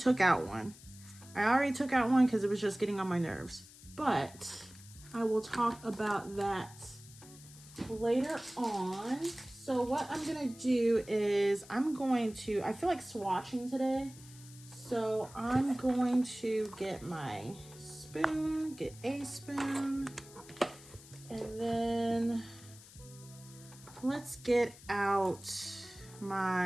out one. Because it was just getting on my nerves. But I will talk about that later on. So what I'm gonna do is I feel like swatching today. So I'm going to get my spoon, get a spoon, and then let's get out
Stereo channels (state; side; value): noise; left; hiss, 20 dB below the sound